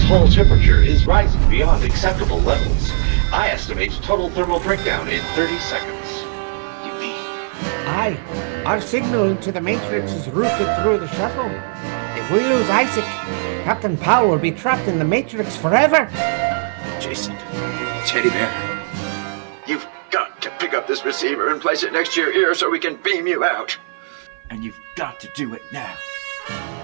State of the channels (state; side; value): silent; left; 57 dB below the other